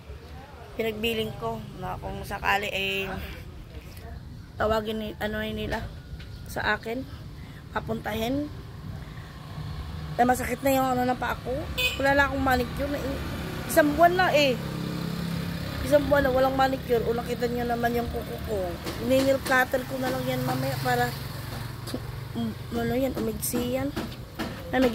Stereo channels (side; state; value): both; identical; correlation 1.00